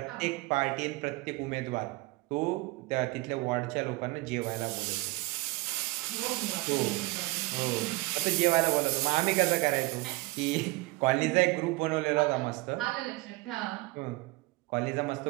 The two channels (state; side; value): quieter; left; 22.7 dB